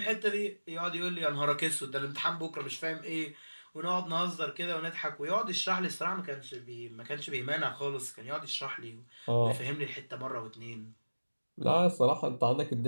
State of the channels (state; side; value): inverted; both; correlation -1.00